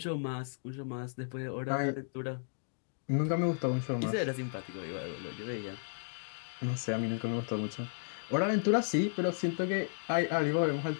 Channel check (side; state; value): right; silent; digital silence